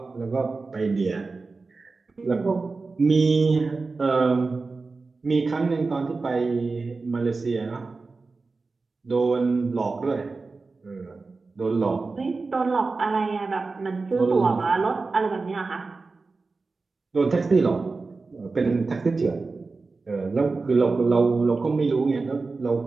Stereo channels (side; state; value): left; quieter; 4.0 dB